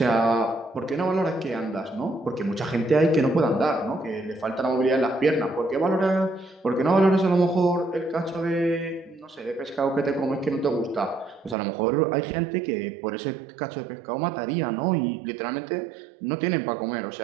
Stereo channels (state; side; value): drops out; left; at 11.6 s